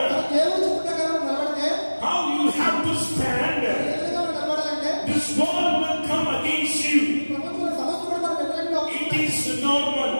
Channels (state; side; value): inverted; both; correlation -1.00